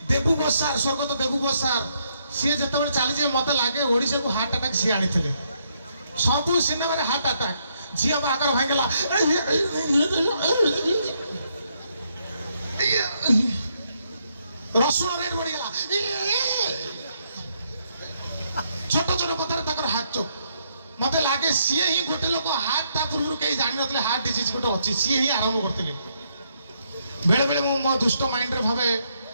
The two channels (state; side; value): inverted; both; correlation -0.75